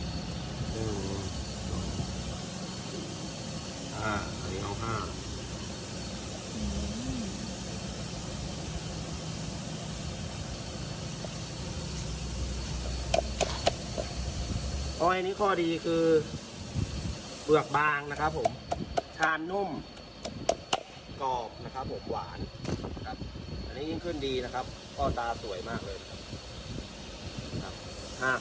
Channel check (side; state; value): both; identical; correlation 1.00